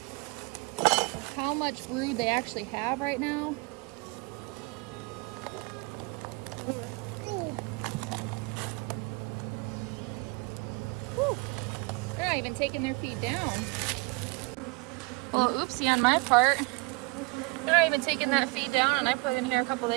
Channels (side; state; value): left; quieter; 27.3 dB